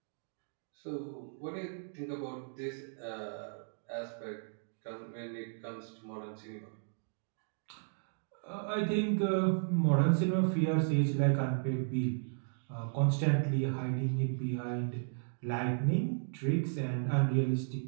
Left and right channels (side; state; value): left; silent; digital silence